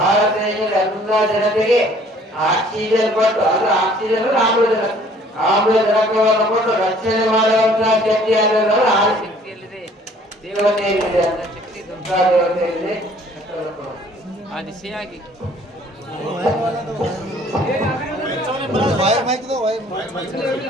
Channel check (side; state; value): both; normal; correlation 0.56